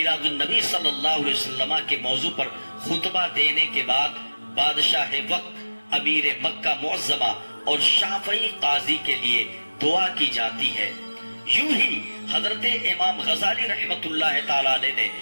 النبی صلی اللہ علیہ وسلم کے موضوع پر خطبہ دینے کے بعد بادشاہ وقت، امیر مکہ معظمہ اور شافعی قاضی کے لیے دعا کی جاتی ہے۔ یوں ہی حضرت امام غزالی رحمت اللہ تعالی علیہ نے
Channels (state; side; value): inverted; both; correlation -1.00